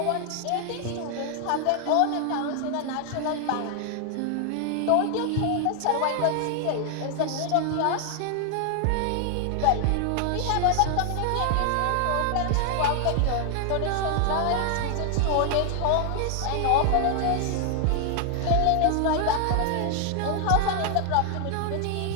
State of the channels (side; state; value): both; different; correlation 0.00